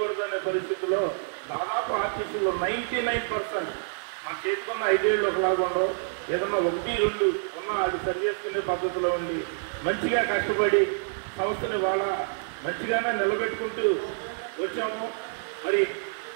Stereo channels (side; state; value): left; silent; digital silence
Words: పరిస్థితిలో దాదాపు ఆర్టీసీలో 99% మన చేసుకున్న 5 ఏళ్ళు ఒకలాగా ఉండవు. ఏదన్నా 1-2 ఉన్నా అది సరి చేసుకునే పద్ధతిలో ఉండి మంచిగా కష్టపడి సంస్థని వాళ్ళ మంచిగానే నిలబెట్టుకుంటూ వచ్చాము. మరి